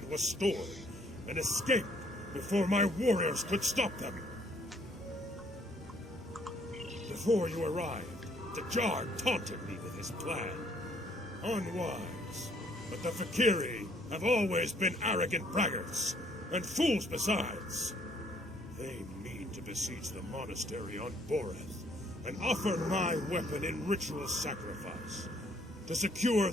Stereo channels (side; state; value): both; normal; correlation 0.64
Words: was stored and escape before my warriors could stop them. Before you arrived, the Jar taunted me with his plan. Unwise, but the Fakiri have always been arrogant braggarts, and fools besides. They mean to besiege the monastery on Boreth, and offer my weapon in ritual sacrifice, to secure